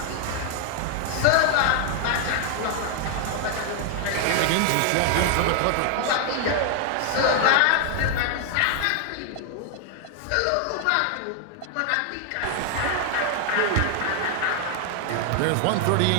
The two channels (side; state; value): both; different; correlation 0.00